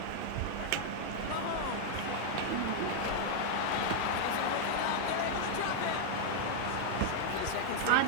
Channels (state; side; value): different; both; correlation 0.00